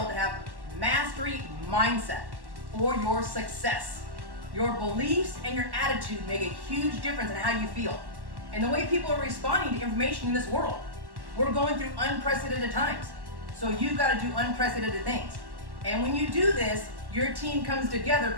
to have mastery mindset for your success. Your beliefs and your attitude make a huge difference in how you feel and the way people are responding to information in this world. We're going through unprecedented times, so you've got to do unprecedented things. And when you do this, your team comes together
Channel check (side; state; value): left; late; 1.1 ms